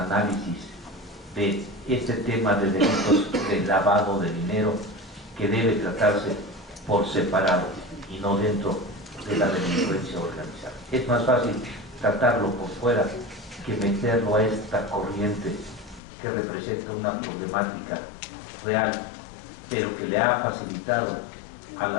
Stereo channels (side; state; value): right; drops out; at 16.0 s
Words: de este tema de delitos de lavado de dinero, que debe tratarse por separado y no dentro de la delincuencia organizada. Es más fácil tratarlo por fuera que meterlo a esta corriente que representa una problemática real, pero que le ha facilitado a